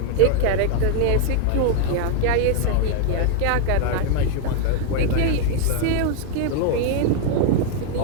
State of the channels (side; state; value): both; different; correlation 0.00